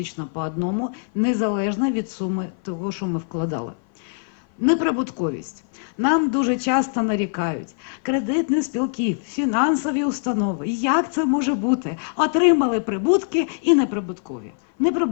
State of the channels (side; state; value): right; silent; 56 dB below the other